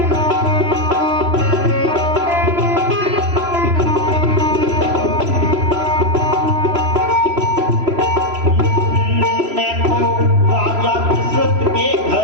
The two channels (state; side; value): late; left; 3.0 ms